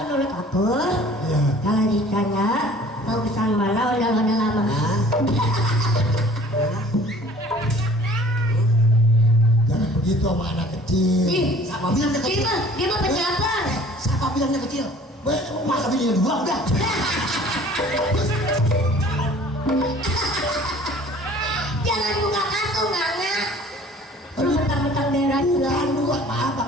menurut aku, Ya. kalau ditanya bagusan mana ondel-ondel lama. Jangan begitu sama anak kecil. Siapa bilang dia kecil? Dia mah pejabat. Siapa bilang dia kecil? Masa bininya dua udah. Jangan buka kartu Nana. Lu mentang-mentang daerah juga. Bukan dua, maaf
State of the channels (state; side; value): normal; both; correlation 0.50